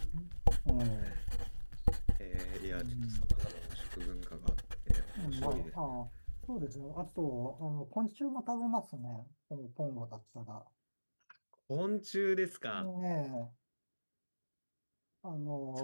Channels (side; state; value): both; inverted; correlation -1.00